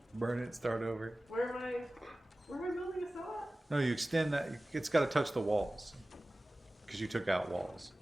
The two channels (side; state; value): both; normal; correlation 0.97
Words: Burn it, start over. Where am I building a cell at? No, you extend that. It's gotta touch the walls. Because you took out walls.